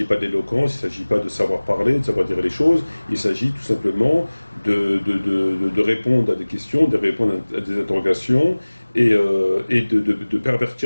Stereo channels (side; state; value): both; inverted; correlation -1.00